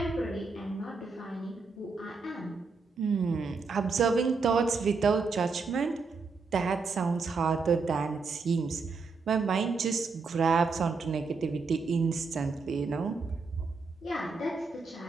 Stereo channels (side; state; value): left; quieter; 4.5 dB